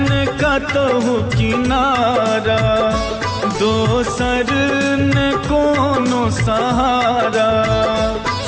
कतहु किनारा दोसर न कोनो सहारा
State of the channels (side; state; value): both; identical; correlation 1.00